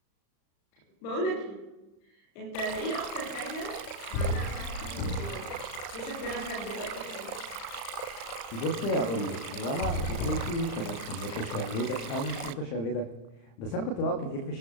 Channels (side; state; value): right; late; 35 ms